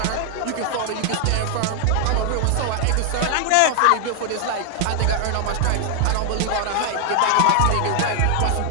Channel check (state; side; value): different; both; correlation 0.00